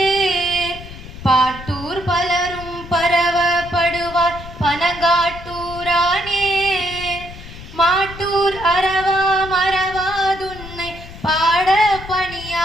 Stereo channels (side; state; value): left; noise; rumble, 14 dB below the sound